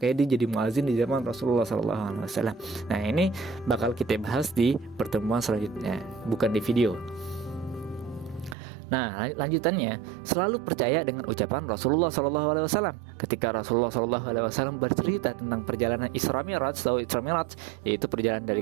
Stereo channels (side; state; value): left; drops out; at 8.6 s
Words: dia jadi muazin di zaman Rasulullah SAW. Nah, ini bakal kita bahas di pertemuan selanjutnya, bukan di video. Nah, lanjutannya, selalu percaya dengan ucapan Rasulullah SAW. Ketika Rasulullah SAW bercerita tentang perjalanan Isra Mi'raj, yaitu perjalanan